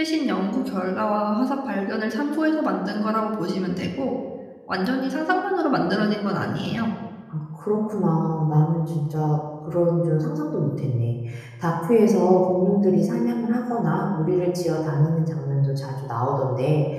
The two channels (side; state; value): both; identical; correlation 1.00